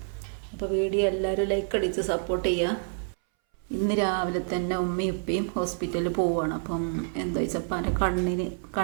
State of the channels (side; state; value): left; silent; 59 dB below the other